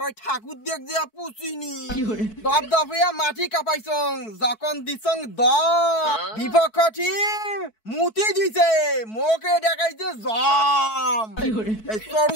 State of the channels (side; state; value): right; late; 4.6 ms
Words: ওই ঠাকুর দেখ দিয়া পুছিনি দপ দপিয়া মাটি কাপাইছং যখন দিছং দ বিপক্ষ টিম মুতি দিছে মোকে দেখাইছে জম এই সরু